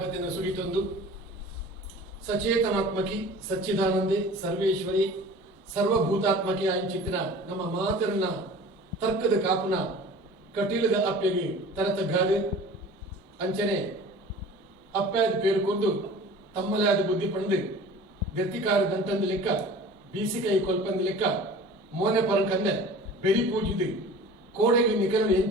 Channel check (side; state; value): both; normal; correlation 0.42